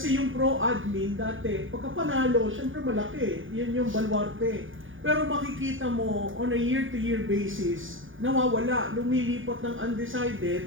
yung pro-admin dati, pagka panalo, syempre malaki. Yun yung baluarte. Pero makikita mo, on a year-to-year basis, nawawala, lumilipat ng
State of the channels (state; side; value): late; left; 0.58 ms